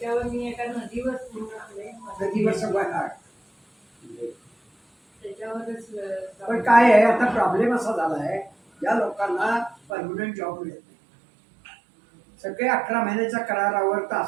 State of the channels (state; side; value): drops out; left; at 9.8 s